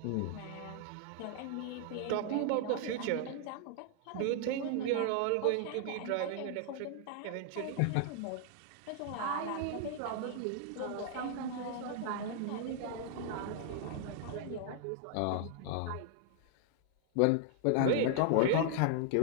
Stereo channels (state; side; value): different; both; correlation 0.00